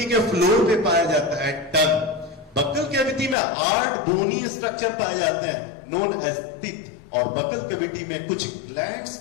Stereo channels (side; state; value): right; drops out; at 3.4 s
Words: के फ्लोर पे पाया जाता है टंग। बक्कल कैविटी में 8 बोनी स्ट्रक्चर पाए जाते हैं नोन एज टीथ, और बक्कल कैविटी में कुछ ग्लैंड्स